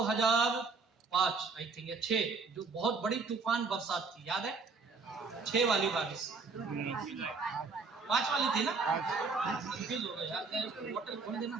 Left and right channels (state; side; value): quieter; left; 4.4 dB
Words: आई थिंक या 6, जो बहुत बड़ी तूफान बरसात थी, याद है? 6 वाली बारिश, 5 वाली थी ना, कंफ्यूज हो गए यार, होटल खोल देना।